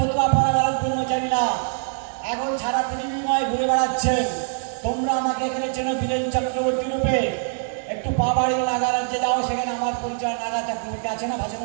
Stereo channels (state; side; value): silent; left; 63 dB below the other